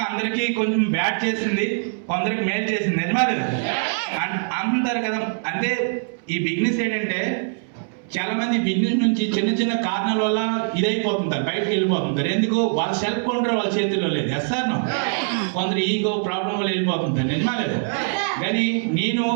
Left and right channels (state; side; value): silent; left; 64 dB below the other